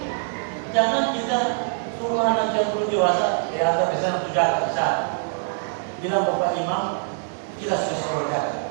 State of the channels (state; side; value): silent; left; digital silence